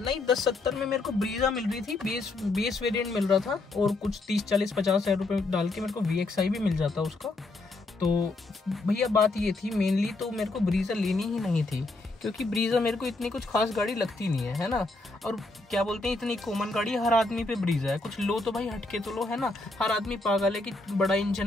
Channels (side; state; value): right; quieter; 3.1 dB